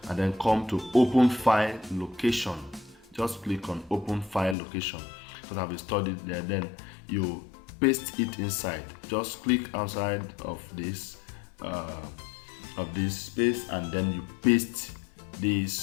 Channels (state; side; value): drops out; right; at 4.5 s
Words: and then come to open file location. Just click on open file location because I've installed it there. Then you paste it inside. Just click outside of this space and then you paste